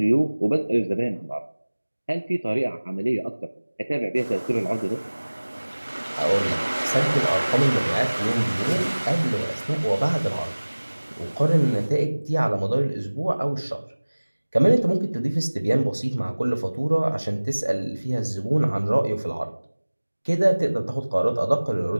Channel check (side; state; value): both; inverted; correlation -1.00